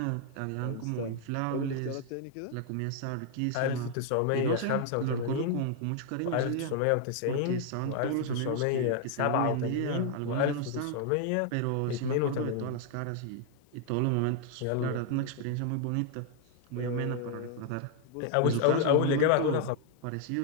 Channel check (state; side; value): different; both; correlation 0.00